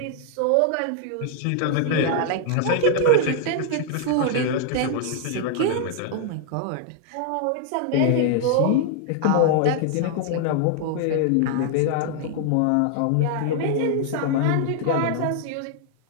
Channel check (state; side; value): different; both; correlation 0.00